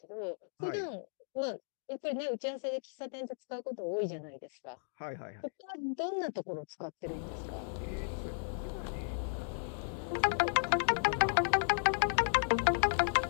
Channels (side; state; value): right; silent; digital silence